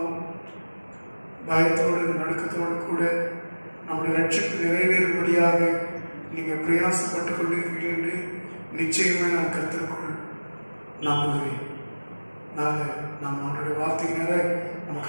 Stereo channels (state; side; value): inverted; both; correlation -1.00